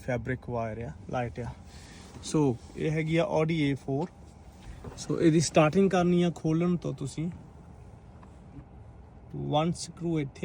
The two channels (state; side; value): identical; both; correlation 1.00